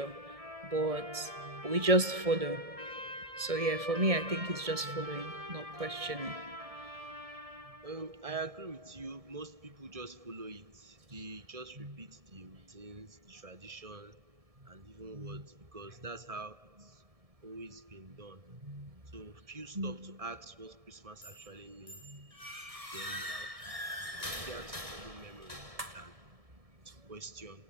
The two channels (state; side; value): late; left; 1.7 ms